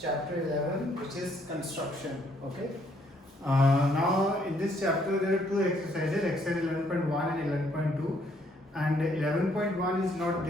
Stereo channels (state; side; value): normal; both; correlation 0.68